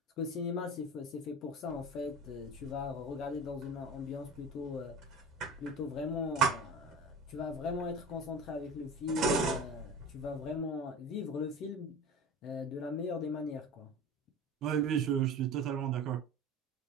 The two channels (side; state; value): both; normal; correlation 0.33